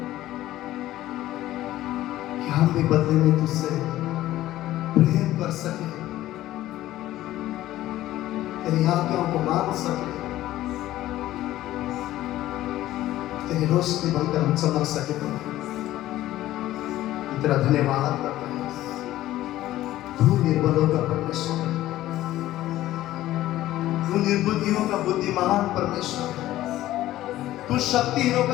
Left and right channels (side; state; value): right; quieter; 14.7 dB